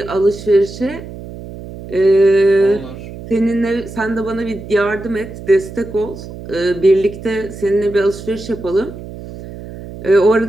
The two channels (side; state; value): right; noise; hum, 13 dB below the sound